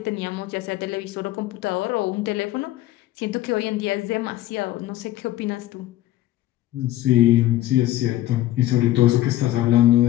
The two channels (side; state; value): right; quieter; 14.9 dB